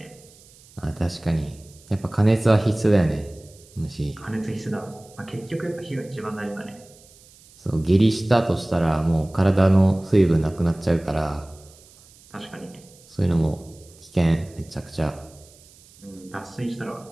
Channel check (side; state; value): right; noise; hiss, 25 dB below the sound